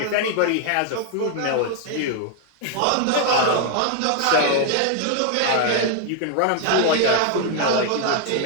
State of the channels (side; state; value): both; different; correlation 0.00